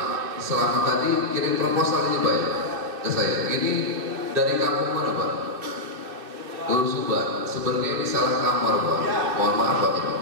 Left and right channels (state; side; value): late; left; 2.7 ms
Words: Selamat tadi kirim proposal ini Pak ya ke saya. Ini dari kampung mana Pak? Lur Suban. Sebenarnya ini salah kamar Pak. Mohon maaf Pak.